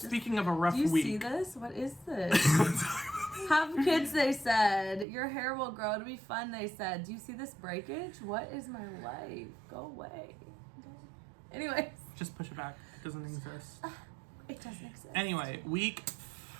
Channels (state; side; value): drops out; left; at 5.1 s